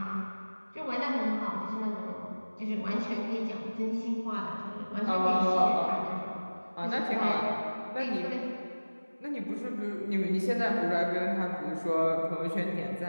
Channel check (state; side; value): inverted; both; correlation -1.00